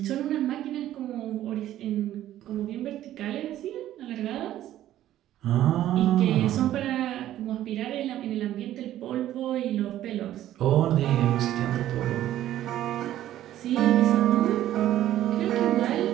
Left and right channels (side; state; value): left; quieter; 12.9 dB